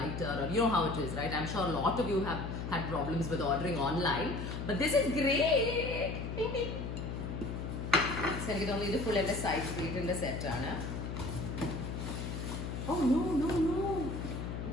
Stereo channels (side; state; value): left; noise; hum, 5 dB below the sound